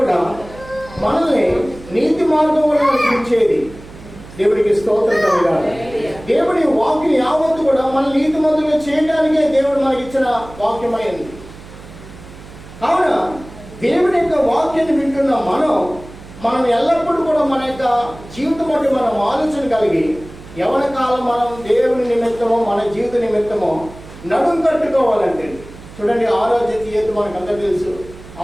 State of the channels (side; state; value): right; noise; hum, 18 dB below the sound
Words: మనల్ని నీతి మార్గంలో నడిపించేది. దేవుడికి స్తోత్రం కలగాలి. దేవుడి వాక్యం యావత్తు కూడా మన నీతి మంతులుగా చేయడానికే దేవుడు మనకి ఇచ్చిన వాక్యమైంది. కావున దేవుని యొక్క వాక్యాన్ని వింటున్న మనం మనం ఎల్లప్పుడూ కూడా మన యొక్క జీవితం బట్టి మనం ఆలోచన కలిగి యవన కాలం మనం దేవుని నిమిత్తమో మన జీవిత నిమిత్తమో నడుం కట్టుకోవాలంటే చూడండి, ఆరోగ్య తీయత మనకు అందరూ తెలుసు.